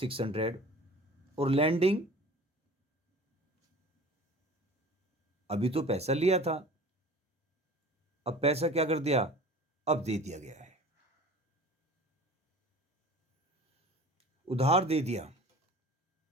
और लैंडिंग अभी तो पैसा लिया था, अब पैसा क्या कर दिया, अब दे दिया गया है, उधार दे दिया।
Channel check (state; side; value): normal; both; correlation 0.42